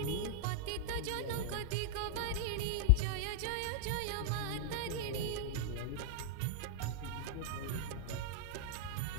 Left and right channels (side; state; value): both; different; correlation 0.00